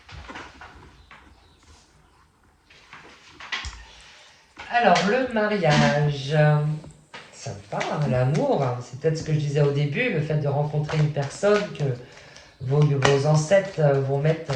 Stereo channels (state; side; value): identical; both; correlation 1.00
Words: Alors, le mariage. Sympa, hein, l'amour, hein. C'est peut-être ce que je disais au début, le fait de rencontrer une personne, que vos ancêtres vont mettre